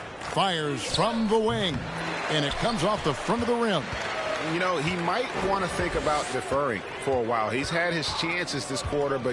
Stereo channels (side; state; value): both; identical; correlation 1.00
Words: Fires from the wing. And it comes off the front of the rim. You know, he might want to think about deferring for a while. He's had his chances this quarter,